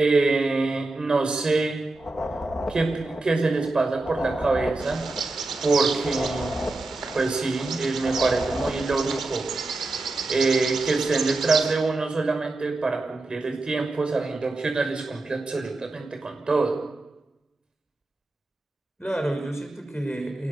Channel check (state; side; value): quieter; left; 3.1 dB